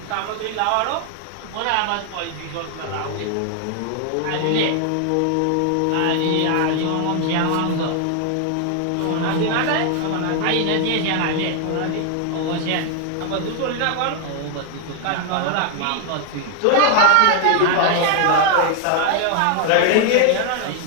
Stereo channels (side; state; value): both; different; correlation 0.00